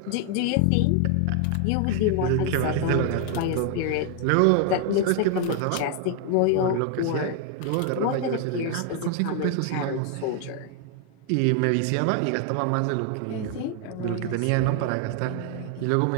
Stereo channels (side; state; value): both; different; correlation 0.00